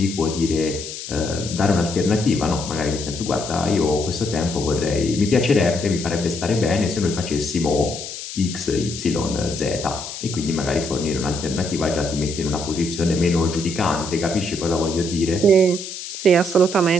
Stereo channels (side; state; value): left; noise; hiss, 9 dB below the sound